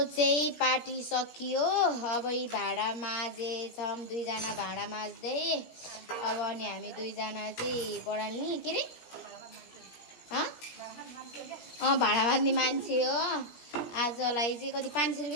चाहिँ पार्टी सकियो अब यी भाँडा माझेछौँ दुईजना भाँडा माझ्दै अब अनि हामी दुईजना चाहिँ पढाल्ने के अरे भाँडा माझ्ने मान्छे हो आजलाई चाहिँ कति 500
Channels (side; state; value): right; late; 17 ms